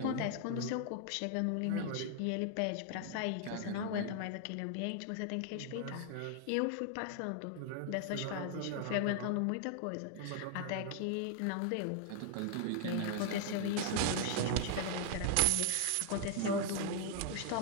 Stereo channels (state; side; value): different; both; correlation 0.00